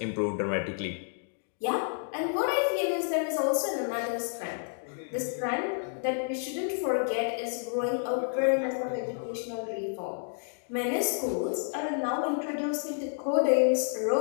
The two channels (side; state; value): right; silent; digital silence